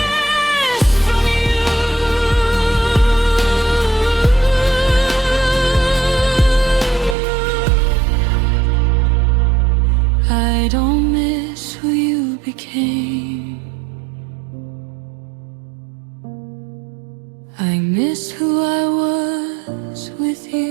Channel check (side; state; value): left; drops out; at 7.2 s